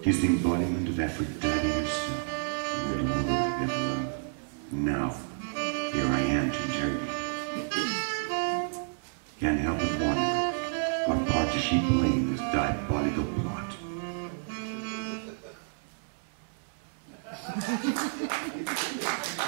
She's the embodiment of Aphrodite herself, the only woman I've ever loved. Now, here I am to interrogate. Can't help but wonder, what part does she play in this diabolical plot?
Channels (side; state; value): left; silent; 58 dB below the other